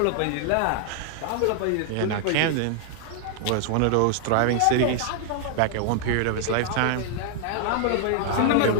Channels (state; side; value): different; both; correlation 0.00